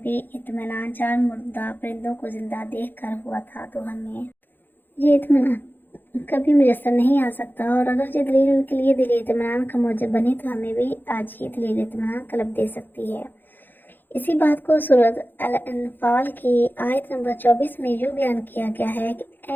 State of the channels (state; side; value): late; right; 0.091 ms